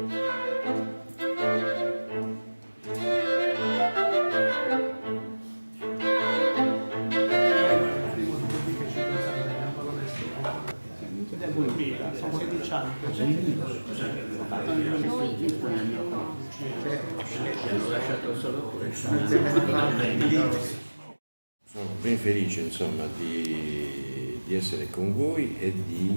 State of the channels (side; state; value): both; inverted; correlation -1.00